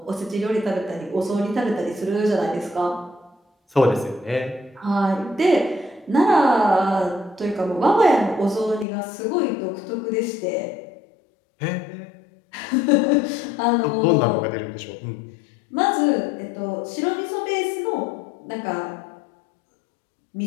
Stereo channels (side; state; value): right; drops out; at 8.8 s